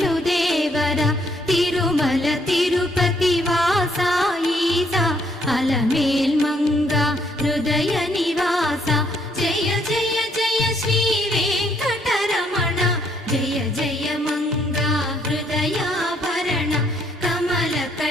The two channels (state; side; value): normal; both; correlation 0.69